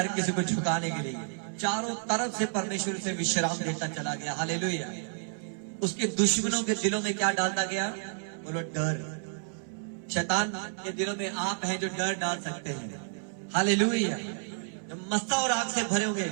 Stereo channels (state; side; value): silent; left; 58 dB below the other